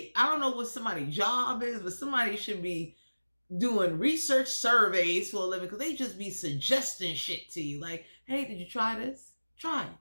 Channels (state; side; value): inverted; both; correlation -1.00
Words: I don't know what somebody's job is, but somebody should be doing research surveys for a living, because they just be suggesting shit to you. Like, hey, did you try this? Try it.